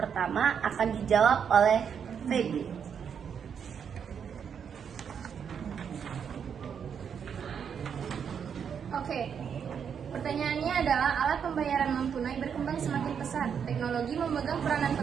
akan dijawab oleh Feby. Oke. Pertanyaannya adalah alat pembayaran non tunai berkembang semakin pesat. Teknologi memegang peranan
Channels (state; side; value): quieter; left; 7.4 dB